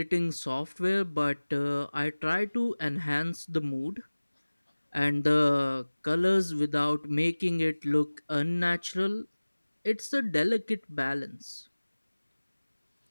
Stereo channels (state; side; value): inverted; both; correlation -1.00